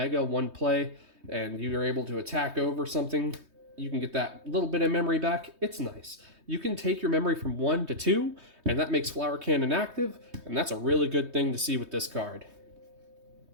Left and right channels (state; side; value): late; left; 3.2 ms